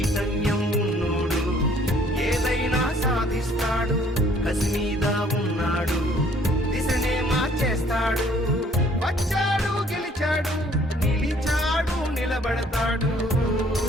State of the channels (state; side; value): normal; both; correlation 0.59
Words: ఉన్నోడు ఏదైనా సాధిస్తాడు. కసి మీద ఉన్నాడు, దిశనే మార్చేస్తాడు. వచ్చాడు గెలిచాడు, నిలిచాడు నిలబడతాడు.